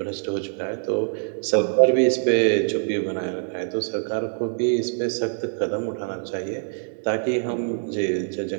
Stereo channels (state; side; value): silent; left; digital silence